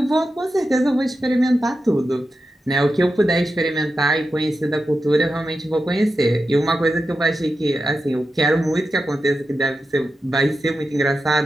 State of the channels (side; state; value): both; normal; correlation 0.90